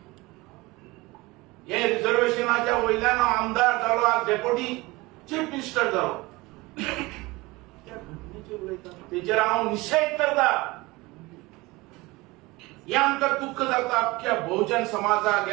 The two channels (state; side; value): quieter; left; 22.2 dB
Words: हे रिझर्वेशनाच्या वयल्यान आमदार जालो आज डेप्युटी चीफ मिनिस्टर जालो त्या घटनेचेर उलयता तेजेर हांव निशेध करता. हे आमकां दुःख जाता अख्ख्या बहुजन समाजाक